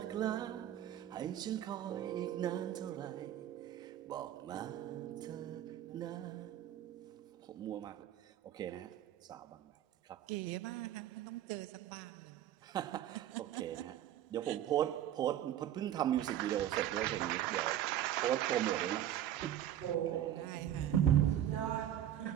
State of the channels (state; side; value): quieter; left; 11.6 dB